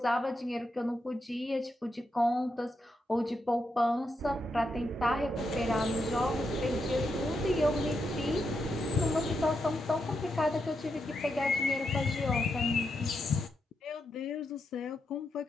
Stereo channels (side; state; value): both; normal; correlation 0.83